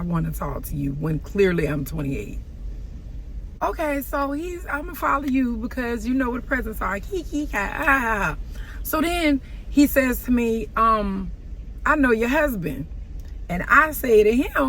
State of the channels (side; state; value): both; identical; correlation 1.00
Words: to talk to you when clearly I'm 28? Okay, so I'm going to follow you because you know what the presents are. So then he says to me, I know your husband. And I say to